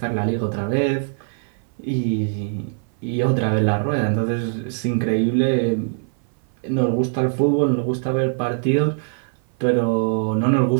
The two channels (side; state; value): left; silent; 57 dB below the other